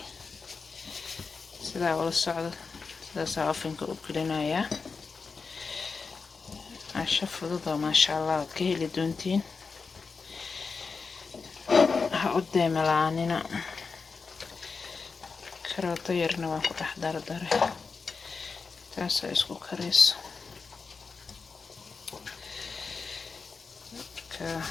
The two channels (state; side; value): quieter; right; 4.8 dB